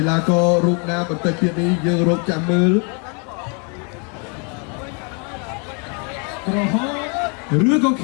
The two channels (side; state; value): right; quieter; 36.6 dB